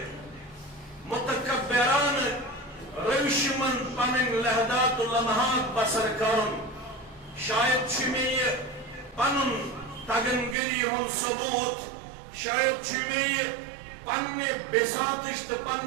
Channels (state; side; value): drops out; left; at 10.6 s